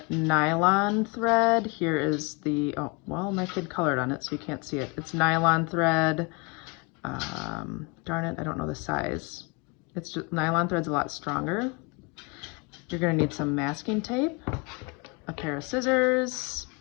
nylon thread. Here is the, oh, well, my kid colored on it, so you can't see it. It's nylon thread. Darn it, I don't know the size. It's just, nylon thread's a lot stronger. You're gonna need some masking tape, a pair of scissors,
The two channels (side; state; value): right; quieter; 29.4 dB